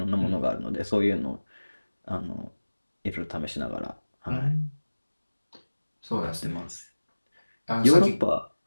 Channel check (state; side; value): inverted; both; correlation -1.00